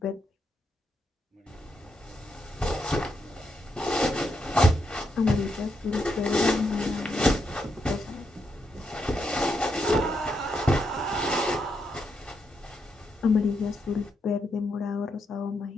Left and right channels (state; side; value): normal; both; correlation 0.81